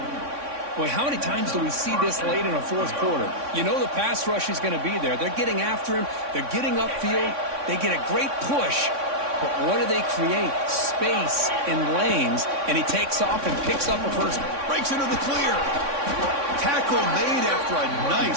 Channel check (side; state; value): left; late; 3.6 ms